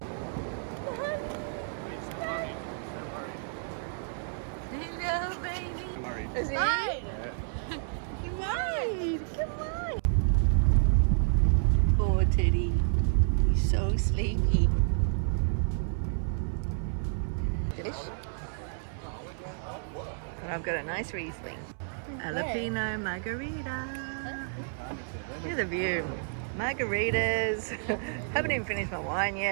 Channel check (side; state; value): left; silent; 58 dB below the other